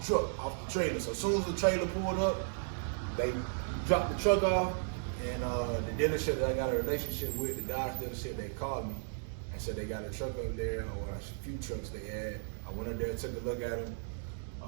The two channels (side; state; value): left; silent; 54 dB below the other